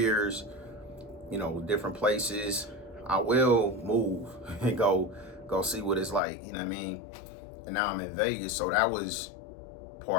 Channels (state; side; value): drops out; right; at 6.2 s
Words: different places. I will move and go see what it's like, you know what I mean? And now I'm in Vegas, so that was